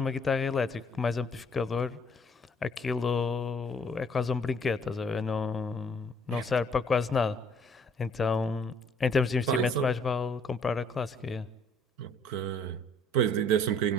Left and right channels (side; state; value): both; normal; correlation 0.61